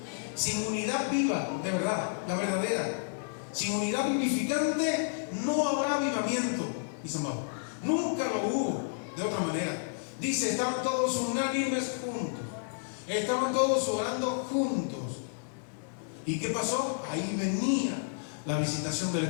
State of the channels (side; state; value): right; silent; digital silence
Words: Sin unidad viva, de verdad, la verdadera, sin unidad vivificante no habrá avivamiento, mis amados. Nunca lo hubo de otra manera. Dice: estaban todos unánimes juntos. Estaban todos orando juntos. ¿Y qué pasó? Ahí venía la visitación del